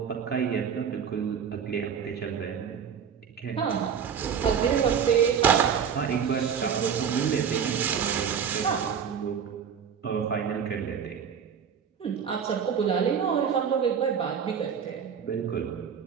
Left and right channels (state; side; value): quieter; left; 7.4 dB